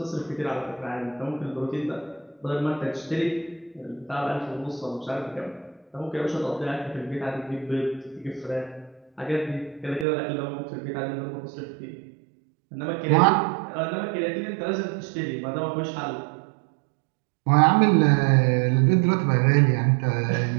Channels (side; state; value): left; drops out; at 10.1 s